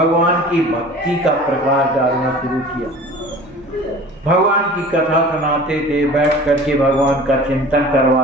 की भक्ति का प्रकाश डालना शुरू किया। भगवान की कथा सुनाते थे, बैठ करके भगवान का चिंतन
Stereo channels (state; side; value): normal; both; correlation 0.42